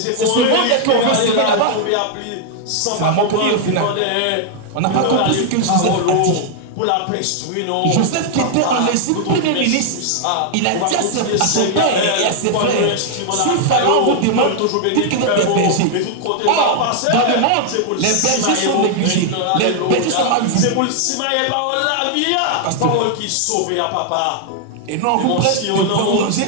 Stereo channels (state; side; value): different; both; correlation 0.00